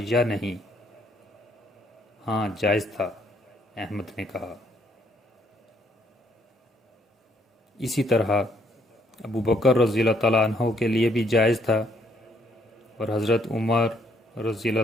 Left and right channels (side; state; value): both; normal; correlation 0.69